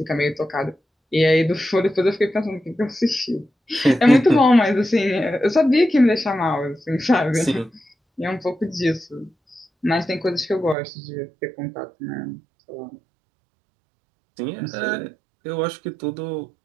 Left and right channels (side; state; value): left; drops out; at 10.8 s